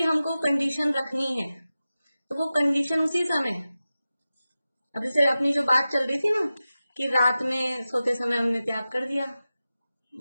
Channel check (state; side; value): inverted; both; correlation -0.94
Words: हमको कंडीशन रखनी है तो वो कंडीशन उसी समय, अब जैसे अपनी जो बात चल रही थी ना कि रात में सोते समय हमने त्याग कर दिया,